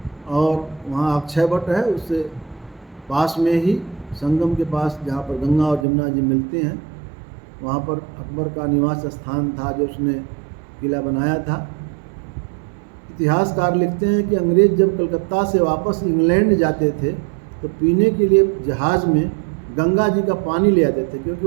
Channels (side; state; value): left; drops out; at 5.9 s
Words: और वहाँ अक्षय वट है, उससे पास में ही संगम के पास जहाँ पर गंगा और जमुना जी मिलते हैं, वहाँ पर अकबर का निवास स्थान था जो उसने किला बनाया था। इतिहासकार लिखते हैं कि अंग्रेज़ जब कलकत्ता से वापस इंग्लैंड जाते थे तो पीने के लिए जहाज़ में गंगा जी का पानी ले आते थे, क्योंकि